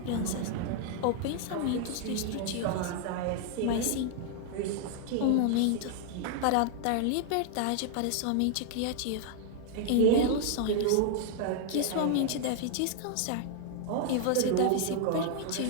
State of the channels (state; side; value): different; both; correlation -0.01